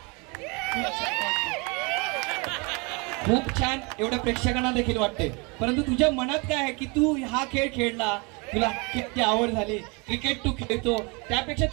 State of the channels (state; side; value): quieter; left; 30.0 dB